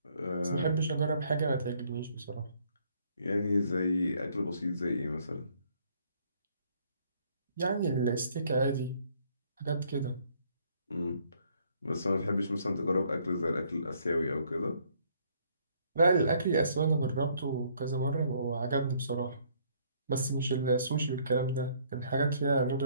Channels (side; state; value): both; inverted; correlation -0.65